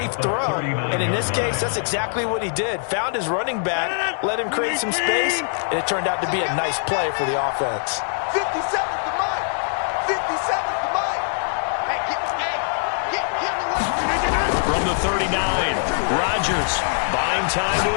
throw. And in this case, that's exactly what he did. Found his running back, let him create some space, and it turned out to be a nice play for the offense. 57's the Mike. 57's the Mike. Hey, get the From the 39, Rodgers buying time to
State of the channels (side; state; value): right; silent; 61 dB below the other